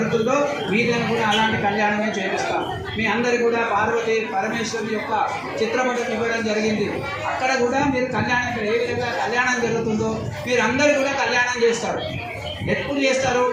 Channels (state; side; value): identical; both; correlation 1.00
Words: మీదైనా కూడా అలాంటి కళ్యాణమే చేపిస్తాం. మీ అందరు కూడా పార్వతి పరమేశ్వరుని యొక్క చిత్రపటం ఇవ్వడం జరిగింది. అక్కడ కూడా మీరు కళ్యాణం ఇక్కడ ఏ విధంగా కళ్యాణం జరుగుతుందో మీరు అందరూ కూడా కళ్యాణం చేస్తారు. ఎప్పుడు చేస్తారు